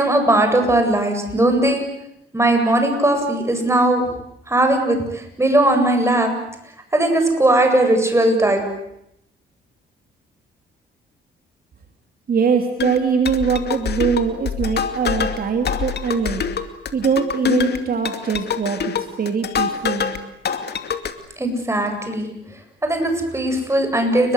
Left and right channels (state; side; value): normal; both; correlation 0.55